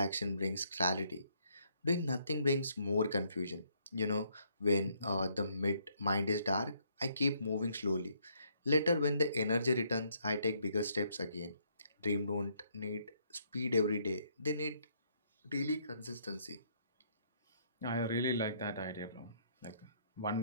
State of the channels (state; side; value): inverted; both; correlation -0.70